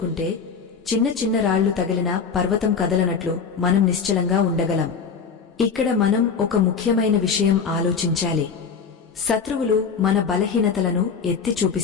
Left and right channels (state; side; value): quieter; right; 5.9 dB